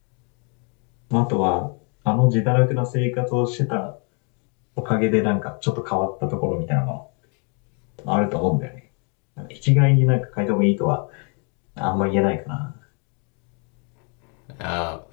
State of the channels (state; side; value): quieter; right; 36.9 dB